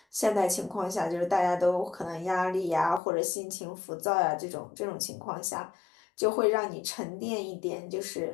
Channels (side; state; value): right; drops out; at 3.0 s